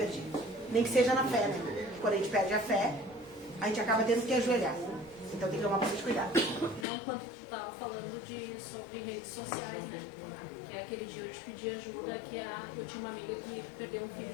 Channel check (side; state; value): right; drops out; at 6.9 s